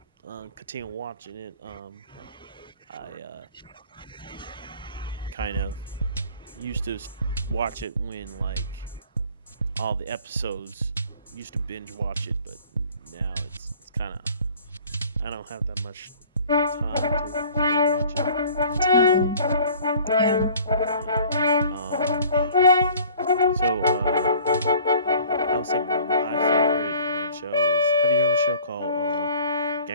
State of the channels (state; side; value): inverted; both; correlation -0.50